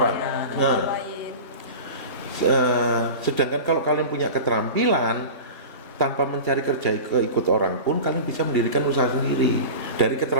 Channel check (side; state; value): both; inverted; correlation -0.31